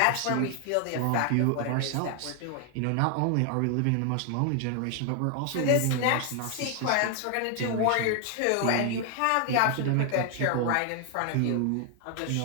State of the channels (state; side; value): different; both; correlation 0.00